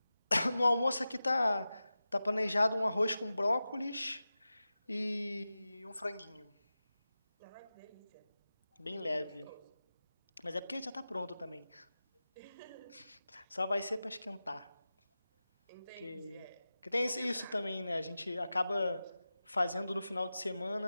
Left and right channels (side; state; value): both; inverted; correlation -0.95